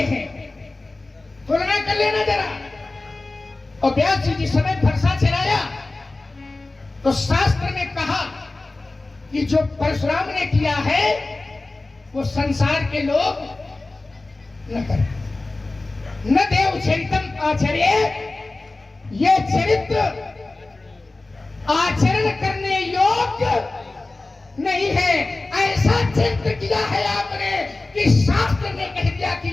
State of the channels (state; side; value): quieter; right; 3.2 dB